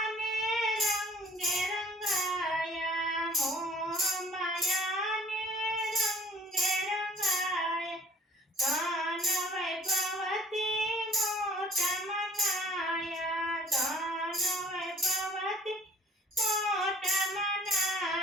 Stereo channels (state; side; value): normal; both; correlation 0.53